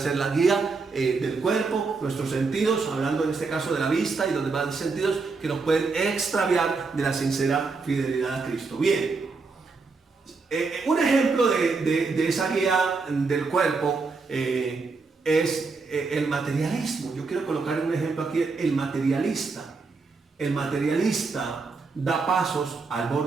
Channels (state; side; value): quieter; left; 4.3 dB